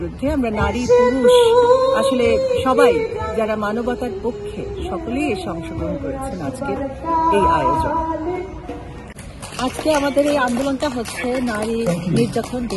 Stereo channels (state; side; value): identical; both; correlation 1.00